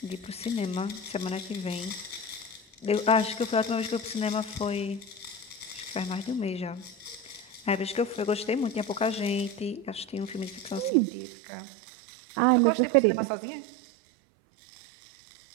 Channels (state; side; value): drops out; left; at 10.9 s